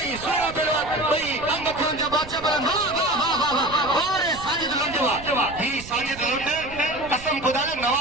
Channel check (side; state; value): right; noise; rumble, 15 dB below the sound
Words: सूरा पहलवान भई अंग खरन जा बादशाह पहलवान वाह अरे साजिद लुंडवा ही साजिद लुंड कसम खुदा जो